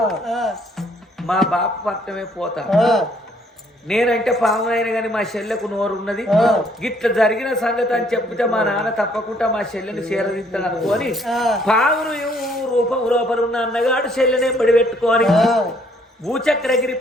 మా బాప పట్టమే పోతా నేనంటే పామునైనా కానీ మా చెల్లెకు నోరు ఉన్నది గిట్ల జరిగిన సంగతి అని చెప్తే మా నాన్న తప్పకుండా మా చెల్లెని చేరదిస్తాను అనుకోని పామును రూపం లోపల ఉన్న అన్నగాడు చెల్లెనే బడి పెట్టుకొని భూచక్రగిరి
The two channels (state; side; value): normal; both; correlation 0.65